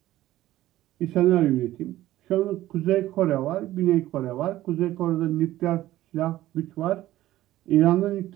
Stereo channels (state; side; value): quieter; left; 15.0 dB